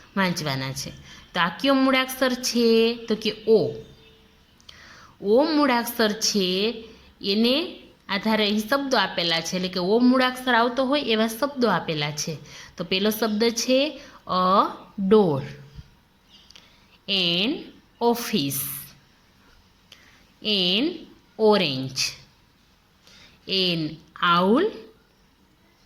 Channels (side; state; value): both; identical; correlation 1.00